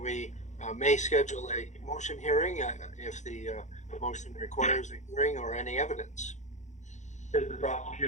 we may schedule a motion hearing if the motion requires a hearing or any evidence. Is the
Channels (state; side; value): late; right; 0.35 ms